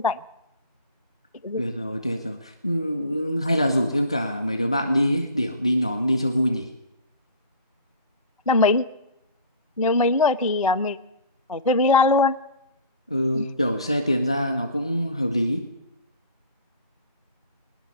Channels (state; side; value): inverted; both; correlation -0.41